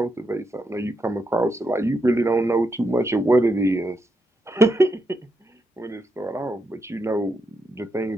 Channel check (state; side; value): normal; both; correlation 0.83